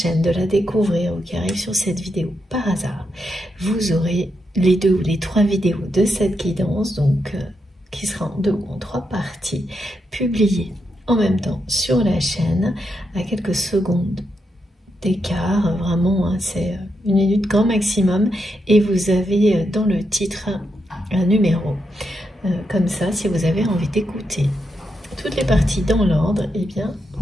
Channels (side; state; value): both; normal; correlation 0.83